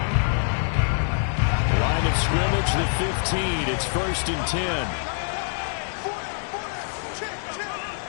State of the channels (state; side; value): silent; right; digital silence